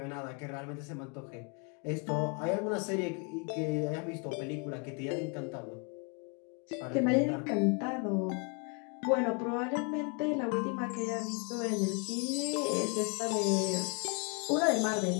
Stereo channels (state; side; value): quieter; right; 34.7 dB